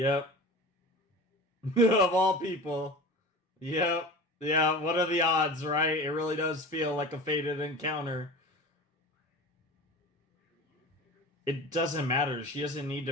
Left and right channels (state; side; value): normal; both; correlation 0.34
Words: Of all people. Yep. Yeah, what are the odds, right? It really does feel like a fated encounter. It doesn't matter. She doesn't need